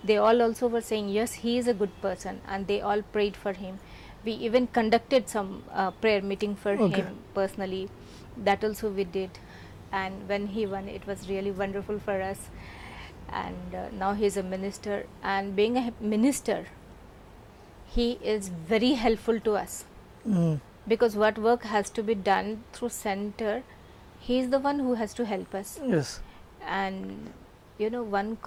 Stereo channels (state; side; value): identical; both; correlation 1.00